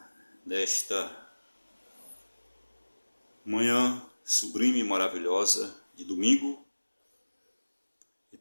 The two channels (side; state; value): both; inverted; correlation -1.00